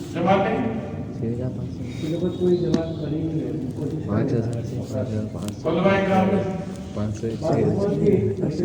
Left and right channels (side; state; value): both; identical; correlation 1.00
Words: जमाते कोई जमात बनी नहीं है। 5,000 से 5,500 उलमाए कराम 500